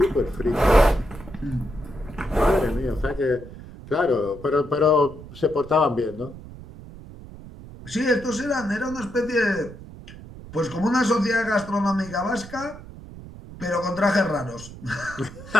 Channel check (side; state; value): right; noise; rumble, 15 dB below the sound